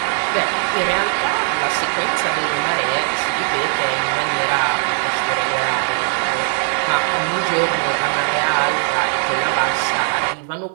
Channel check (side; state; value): left; silent; 56 dB below the other